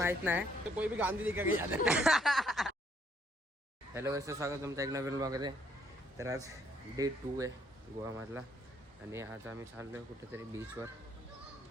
नाही. कोई भी गांधी दिखा गया. हॅलो कसं स्वागत तुमचं एक नवीन ब्लॉगमध्ये. तर आज डे 2 आहे गोवामधला आणि आज आम्ही चाललोय कुठेतरी बीचवर.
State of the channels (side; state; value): both; normal; correlation 0.68